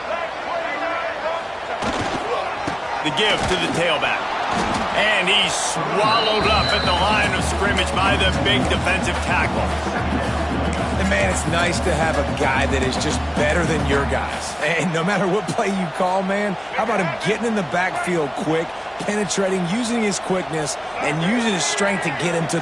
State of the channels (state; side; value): identical; both; correlation 1.00